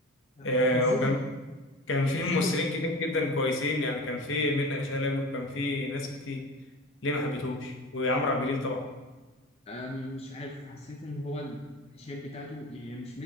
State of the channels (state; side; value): normal; both; correlation 0.33